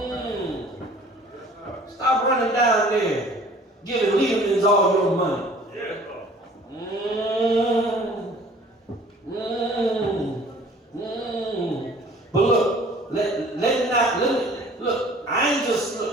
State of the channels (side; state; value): both; normal; correlation 0.51